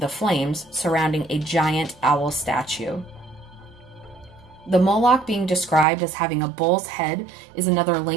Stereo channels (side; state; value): left; drops out; at 5.9 s